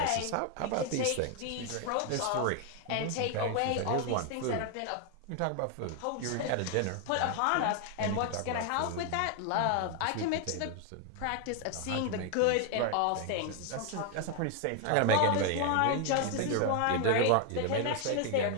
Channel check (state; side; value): different; both; correlation 0.00